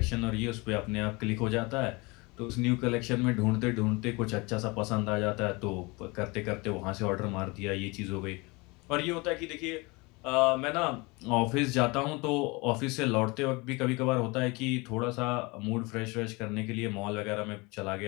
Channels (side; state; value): right; quieter; 25.9 dB